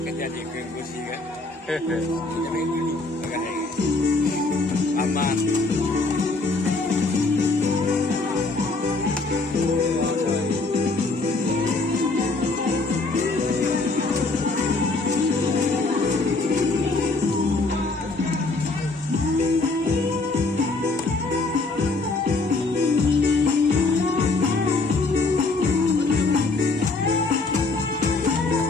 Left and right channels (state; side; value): quieter; right; 3.5 dB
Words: jadi ke Gusni kan? Aman.